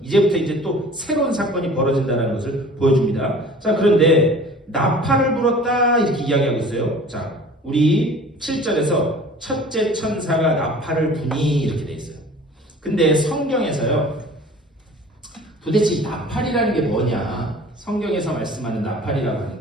이제부터 이제 또 새로운 사건이 벌어진다는 것을 보여줍니다. 자, 그런데 나팔을 불었다 이렇게 이야기하고 있어요. 자, 우리 7절에서 첫째 천사가 나팔을 부니 이렇게 돼 있어요. 근데 성경에서요, 도대체 이 나팔이라는 게 뭐냐? 성경에서 말씀하는 나팔이라고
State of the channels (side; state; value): both; normal; correlation 0.45